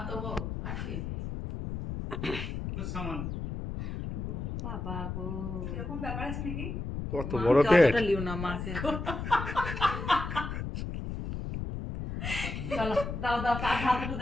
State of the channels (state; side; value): noise; left; rumble, 5 dB below the sound